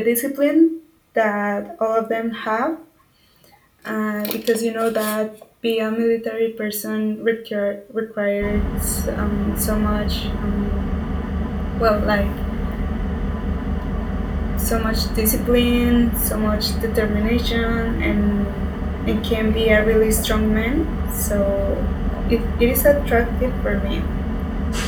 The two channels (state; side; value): identical; both; correlation 1.00